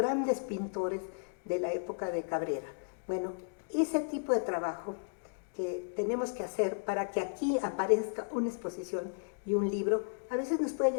pintores de la época de Cabrera. Bueno, ese tipo de trabajo que tenemos que hacer para que aquí aparezca una exposición y un libro, a veces nos puede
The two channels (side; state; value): right; silent; digital silence